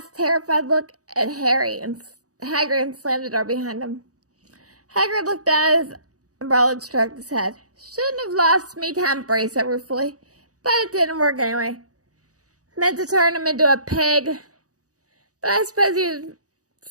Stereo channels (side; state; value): left; late; 0.67 ms